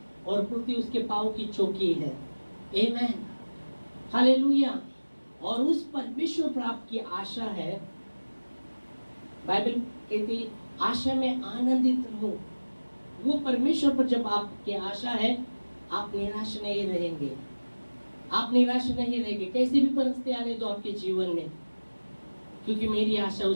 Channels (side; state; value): both; inverted; correlation -1.00